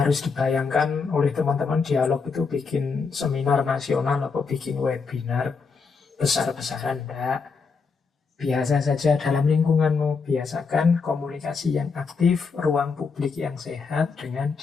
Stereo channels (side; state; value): right; quieter; 5.0 dB